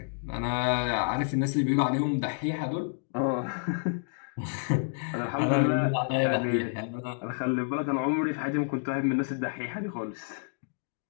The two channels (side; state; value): right; silent; digital silence